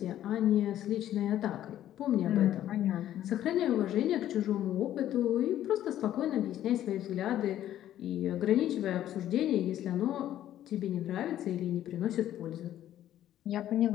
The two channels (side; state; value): right; quieter; 12.1 dB